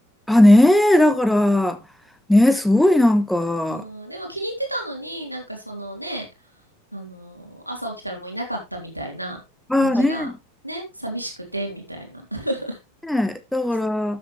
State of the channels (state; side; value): normal; both; correlation 0.87